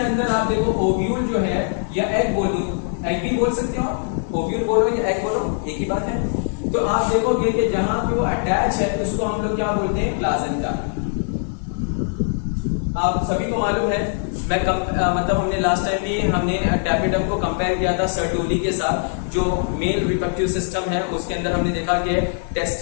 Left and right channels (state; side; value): silent; right; 59 dB below the other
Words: अंदर आप देखो ओव्यूल जो है या एग बोलो, एग भी बोल सकते हो, ओव्यूल बोलो या एग बोलो एक ही बात है। तो आप देखोगे कि जहां पे वो अटैच है उसको हम लोग क्या बोलते हैं, प्लासेंटा। आप सभी को मालूम है, मैं मतलब हमने लास्ट टाइम भी हमने टैपेटम को कंपेयर किया था सर्टोली के साथ, जो मेल रिप्रोडक्टिव सिस्टम है उसके अंदर हमने देखा कि